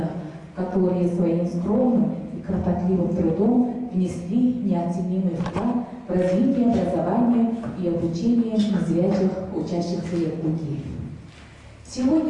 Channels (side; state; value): both; identical; correlation 1.00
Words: которые своим скромным и кропотливым трудом внесли неоценимый вклад в развитие образования и обучения незрячих учащихся Якутии.